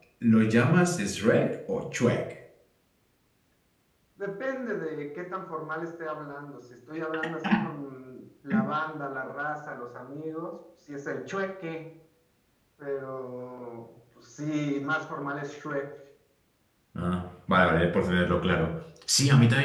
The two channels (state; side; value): identical; both; correlation 1.00